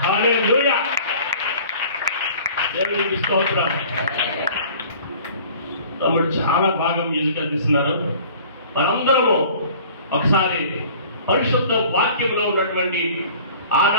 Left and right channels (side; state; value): both; inverted; correlation -0.48